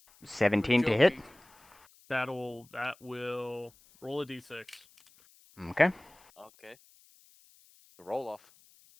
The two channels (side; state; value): left; noise; hiss, 28 dB below the sound